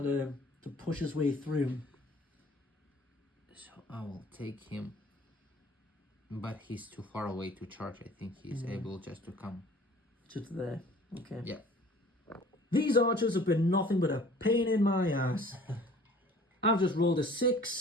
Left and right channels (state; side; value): normal; both; correlation 0.49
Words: to push his way through. So I will take him, but he's too far away to charge. I think he's able just to come. Just there. Okay. Yeah. These archers have been nothing but a pain in my ass. I've just rolled a